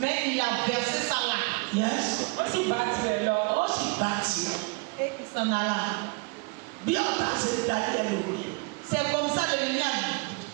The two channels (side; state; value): left; quieter; 29.9 dB